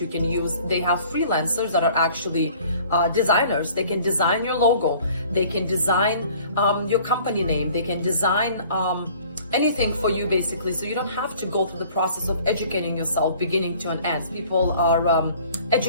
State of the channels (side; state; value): both; inverted; correlation -0.52